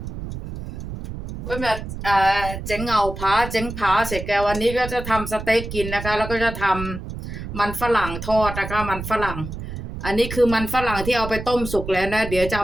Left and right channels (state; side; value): noise; right; rumble, 8 dB below the sound